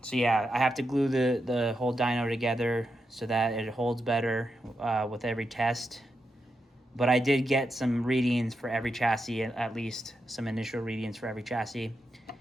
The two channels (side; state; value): both; normal; correlation 0.86